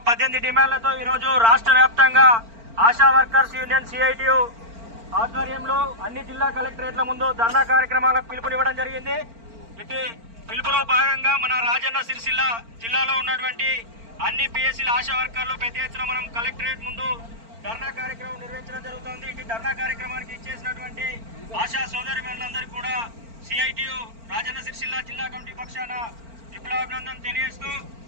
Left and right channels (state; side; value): late; left; 4.4 ms